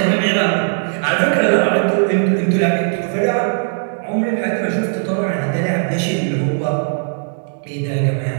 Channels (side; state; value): left; silent; digital silence